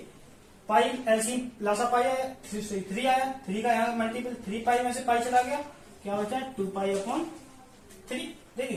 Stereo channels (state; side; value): identical; both; correlation 1.00